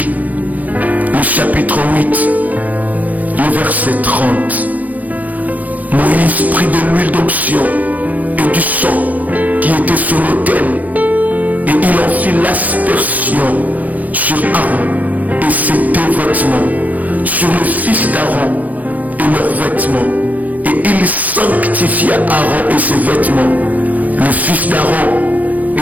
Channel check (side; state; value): left; late; 0.079 ms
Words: le chapitre 8, le verset 30. Moïse prit de l'huile d'onction et du sang qui était sur l'autel, et il en fit l'aspersion sur Aaron et ses 2 vêtements, sur le fils d'Aaron et leurs vêtements, et il sanctifia Aaron et ses vêtements, le fils d'Aaron